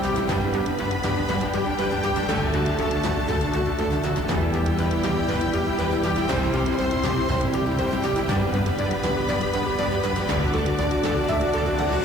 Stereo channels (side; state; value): right; noise; hiss, 28 dB below the sound